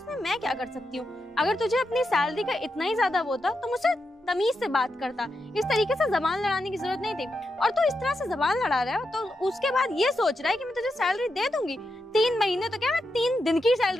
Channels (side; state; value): both; normal; correlation 0.86